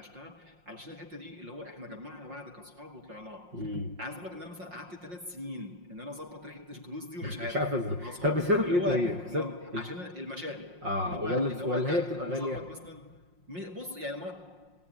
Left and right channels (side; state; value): left; late; 5.6 ms